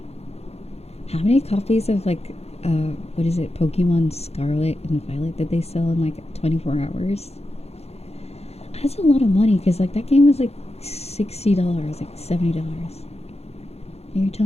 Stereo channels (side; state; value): right; late; 0.30 ms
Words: how many copies of like what is it, Pokemon Scarlet and Violet did they sell in like 24 hours? That's a lot of money because like that game was like $60, like $70. And you're